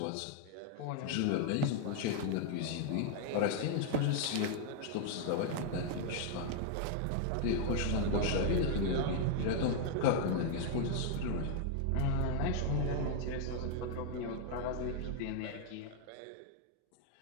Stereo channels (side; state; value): both; different; correlation 0.00